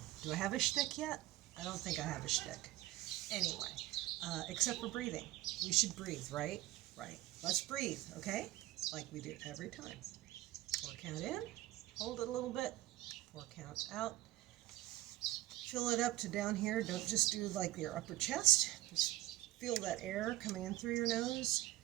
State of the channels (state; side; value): quieter; left; 16.2 dB